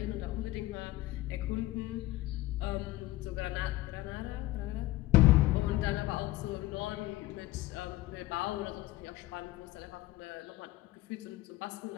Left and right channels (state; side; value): quieter; right; 17.8 dB